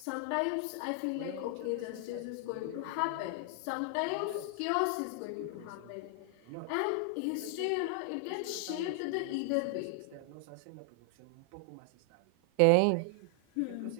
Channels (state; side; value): different; both; correlation 0.00